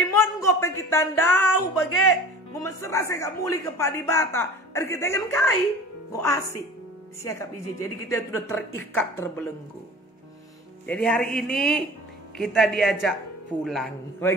mongo pe kita ndau bagai memesera saya gak muli ke padibata. Ada kita kan kai, go asik. Siakap iji. Jadi kita sudah terikat terbelenggu. Jadi hari ini kita diajak pulang,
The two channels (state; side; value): normal; both; correlation 0.41